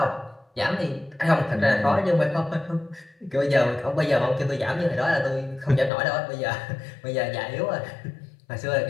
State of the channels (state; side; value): drops out; right; at 5.9 s